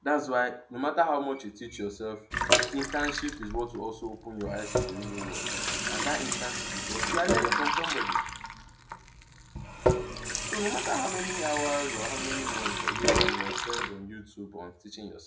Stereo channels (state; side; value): identical; both; correlation 1.00